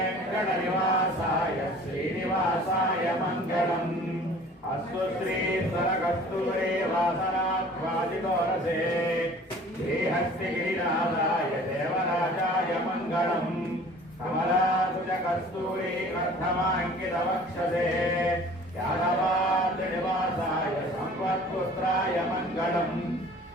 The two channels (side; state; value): both; normal; correlation 0.48